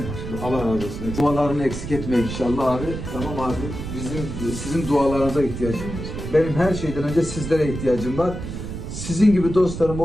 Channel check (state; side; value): noise; right; rumble, 7 dB below the sound